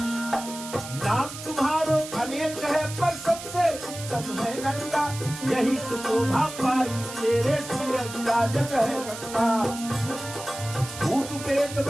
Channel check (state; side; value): noise; right; hiss, 11 dB below the sound